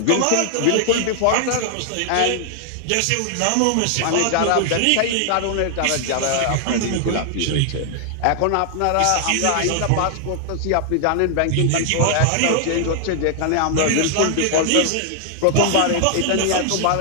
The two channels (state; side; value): different; both; correlation 0.00